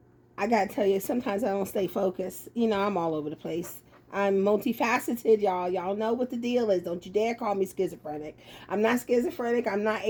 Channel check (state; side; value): identical; both; correlation 1.00